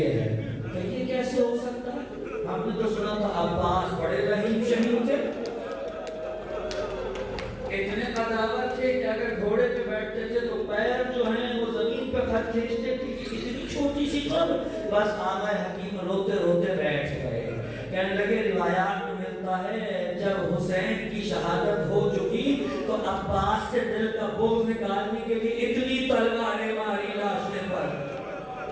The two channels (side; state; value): both; identical; correlation 1.00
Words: ہے، کہ یہ کیسے ہو سکتا ہے؟ ہم نے تو سنا تھا عباس بڑے رحیم شہید تھے، اتنے قداور تھے کہ اگر گھوڑے پہ بیٹھتے تھے تو پیر جو ہیں وہ زمین پہ خط کھینچتے تھے، اتنی چھوٹی سی قبر۔ بس آقا حکیم روتے روتے بیٹھ گئے، کہنے لگے روایات میں ملتا ہے جب حسین کی شہادت ہو چکی تو عباس سے دل کا بوجھ نکالنے کے لیے اتنی تلواریں ماری لاشیں پر